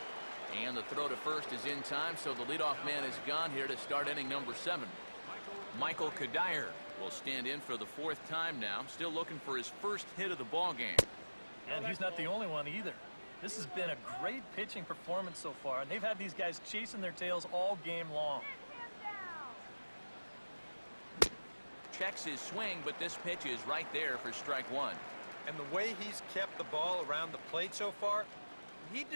And the throw to first is in time, so the leadoff man is gone here to start inning number 7. Michael Kadire will stand in for the 4th time now, still looking for his first hit of the ball game. And he's not the only one either. This has been a great pitching performance so far, and they've had these guys chasing their tails all game long. Checks his swing, but this pitch is right there for strike 1. And the way he's kept the ball around the plate so far, he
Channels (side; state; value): both; inverted; correlation -1.00